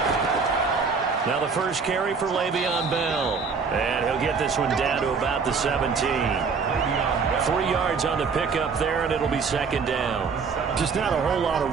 Now the first carry for Le'Veon Bell. And he'll get this one down to about the 17. 3 yards on the pickup there, and it'll be second down. Just not a whole lot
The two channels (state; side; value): quieter; left; 5.3 dB